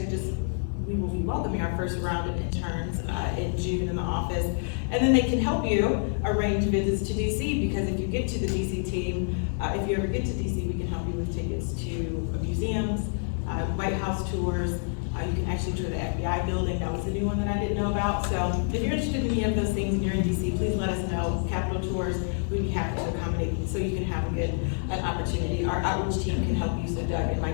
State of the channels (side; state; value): right; silent; 60 dB below the other